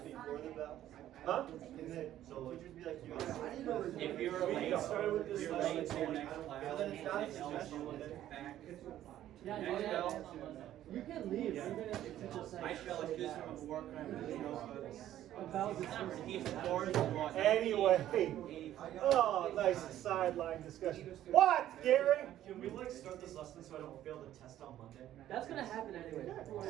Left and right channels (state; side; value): quieter; left; 12.5 dB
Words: the bell? Huh? Can the teachers be like, you If you're We late, started with this you're lesson, late to your I next don't- class. then it's not a and they'll suggestion, do then it back. Yeah, Next yeah, bell. you can leave, even if the teacher says. I feel like this from work, you know, he's Anyway, oh, nice sideline discussion. What, Gary? Can we like start this lesson so I don't fail the test on Monday? That's gonna happen anyway.